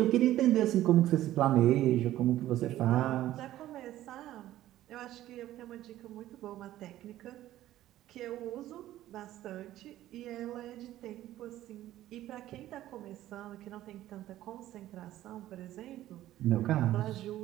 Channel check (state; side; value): quieter; left; 14.0 dB